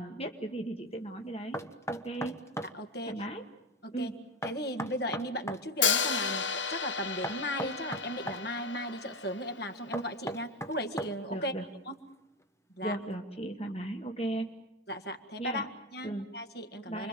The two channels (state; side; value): normal; both; correlation 0.17